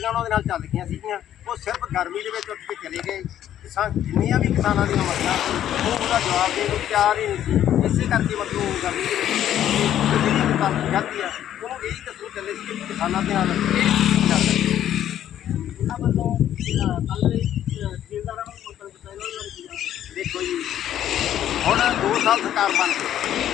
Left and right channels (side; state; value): right; quieter; 11.2 dB